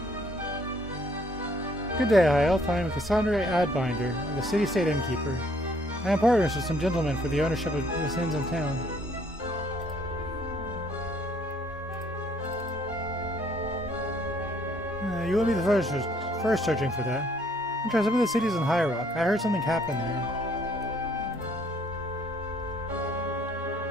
Good day, High Elf. I am Cassandra Adbinder, the city-state innkeeper. I am partners with some gentlemen for the ownership of this inns in town. You will be the first searching for that. I'm trying some of the cities in High Rock. I heard something happened there.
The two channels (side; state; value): both; normal; correlation 0.64